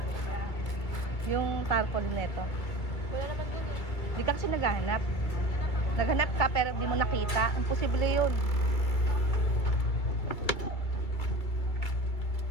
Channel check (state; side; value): late; right; 2.4 ms